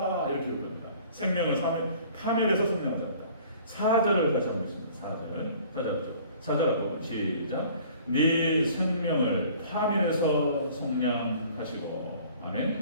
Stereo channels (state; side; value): inverted; both; correlation -0.51